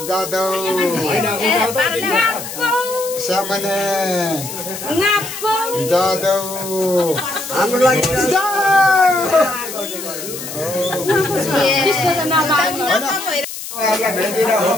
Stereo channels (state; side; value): noise; left; hiss, 9 dB below the sound